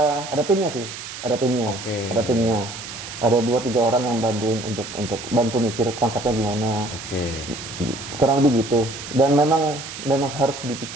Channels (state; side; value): noise; right; hiss, 10 dB below the sound